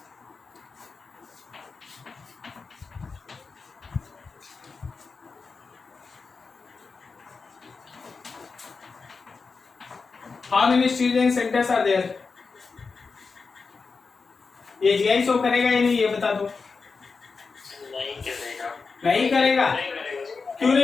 How many stereogenic centres are there. ये जीआई शो करेगा या नहीं ये बता दो. नहीं करेगा. नहीं करेगा. क्यों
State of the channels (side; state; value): right; quieter; 4.7 dB